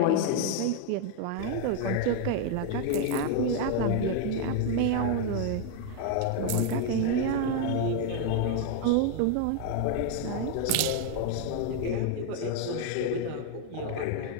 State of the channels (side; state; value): both; different; correlation 0.01